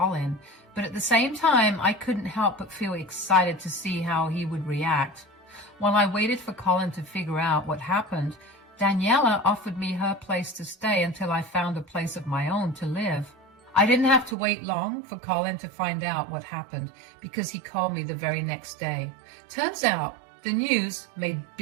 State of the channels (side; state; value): left; drops out; at 14.4 s